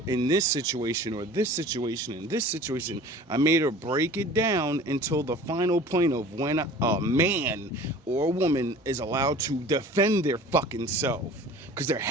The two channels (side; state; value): both; normal; correlation 0.43